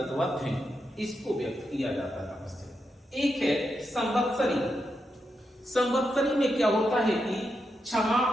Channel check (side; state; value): both; normal; correlation 0.85